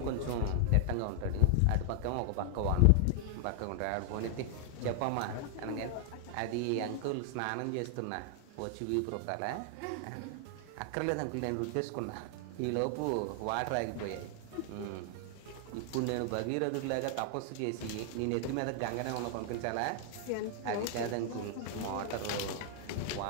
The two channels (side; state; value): both; different; correlation 0.00